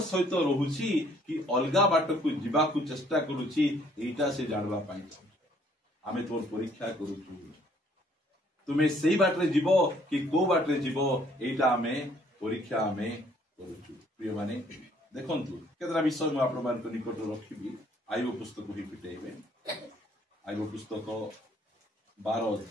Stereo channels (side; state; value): both; normal; correlation 0.62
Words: सहित रहुछि कि अलगा बाट को जीवा को चेष्टा करूछि एटा से जानबा पाई आमे तोर परीक्षा करूछु तुमे सेही बाटरे जीवो कि को बाटरे जीवो एटा आमे परीक्षा आमे करूछु प्रिय माने देखंतु केतरा विषय म आपण मान निकट रखिबी आईबो पुस्तक ही पिटेबे आईबो पुस्तक 12